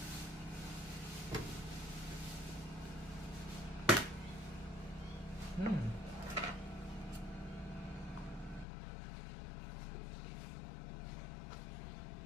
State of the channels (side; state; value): right; drops out; at 8.7 s